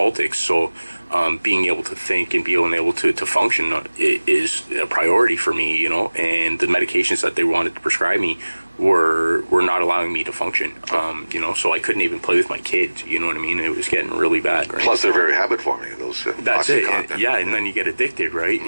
so being able to think and being able to function is a priority for me. You know, and the medications that they wanted to prescribe me were not allowing me to function. You know, so I couldn't even play with my kids. You know what I mean? It was getting really bad. Right? Plus, they're very habit forming. Those that's it. And then you get addicted, right?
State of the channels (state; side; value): inverted; both; correlation -1.00